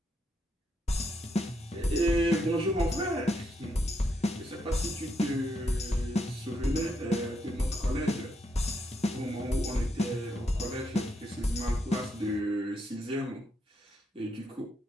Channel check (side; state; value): both; normal; correlation 0.79